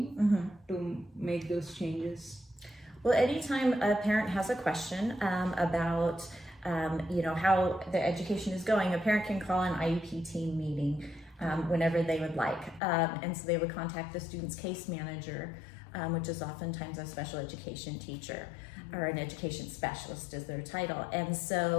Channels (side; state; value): right; drops out; at 12.8 s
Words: to make those changes? Well, anytime a parent has a question about how the education is going, a parent can call an IEP team meeting whenever they would like. And so they would contact the student's case manager, which is oftentimes a special education teacher or an education specialist is their title. And